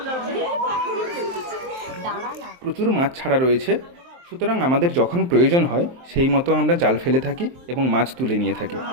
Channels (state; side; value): late; left; 23 ms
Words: প্রচুর মাছ ছাড়া রয়েছে, সুতরাং আমাদের যখন প্রয়োজন হয় সেই মতো আমরা জাল ফেলে থাকি এবং মাছ তুলে নিয়ে থাকি।